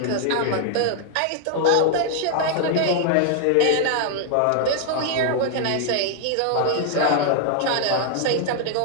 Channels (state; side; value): different; both; correlation 0.00